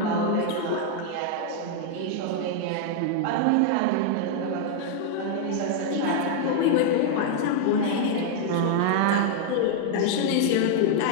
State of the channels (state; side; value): different; both; correlation 0.00